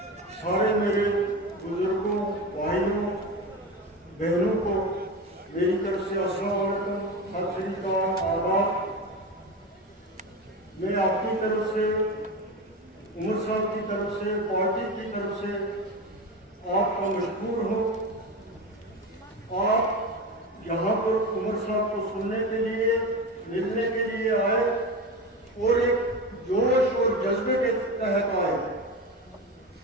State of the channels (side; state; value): both; normal; correlation 0.23